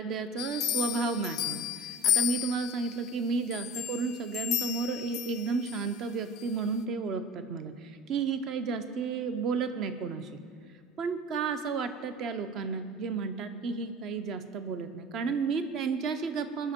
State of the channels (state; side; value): normal; both; correlation 0.40